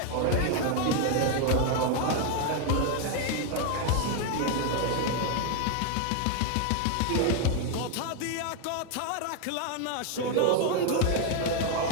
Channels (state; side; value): different; both; correlation 0.01